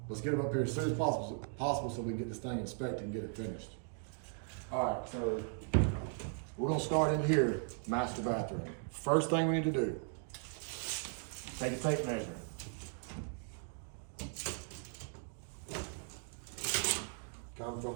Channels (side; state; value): left; silent; 53 dB below the other